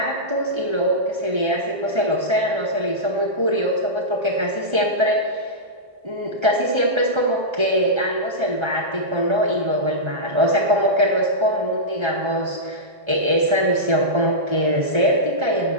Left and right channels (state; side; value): late; left; 1.3 ms